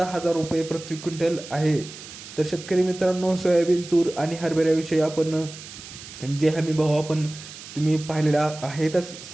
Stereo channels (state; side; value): noise; right; hiss, 15 dB below the sound